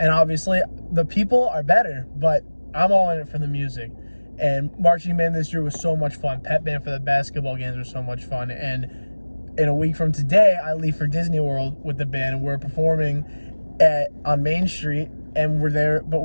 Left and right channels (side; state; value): both; inverted; correlation -1.00